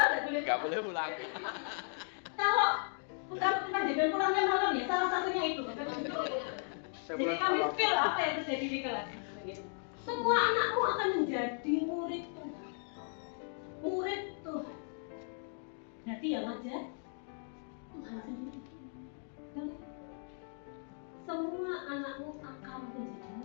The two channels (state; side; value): silent; right; 54 dB below the other